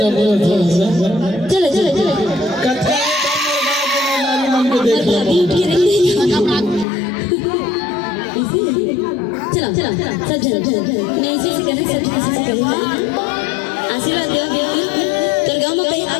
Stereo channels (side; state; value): right; drops out; at 6.9 s